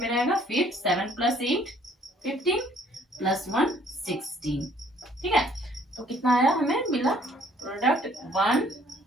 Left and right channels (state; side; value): normal; both; correlation 0.60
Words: रहेगा, फिर 7 प्लस 8 15 प्लस 1 16। ठीक है, तो कितना आया हमें मिला प्रोडक्ट